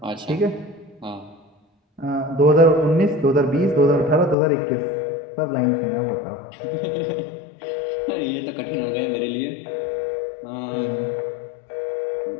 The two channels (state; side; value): drops out; right; at 4.4 s